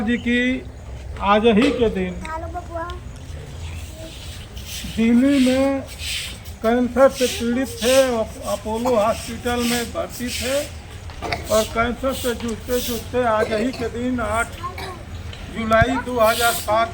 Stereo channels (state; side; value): identical; both; correlation 1.00